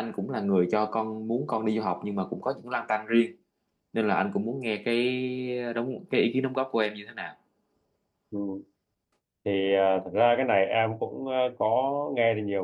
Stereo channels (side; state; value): both; identical; correlation 1.00